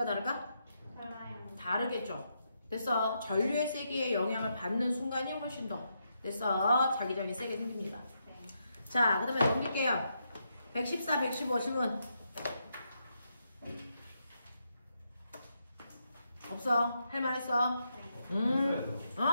다를까? 달라요. 다르겠죠. 됐어. 전류의 세기에 영향을 받는 순간이 훨씬 더 됐어. 자기장이 세게 생깁니다. 네. 자, 그 다음에 넘길게요. 114, 115 질문. 없어? 할만했어? 했어요.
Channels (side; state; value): both; inverted; correlation -0.81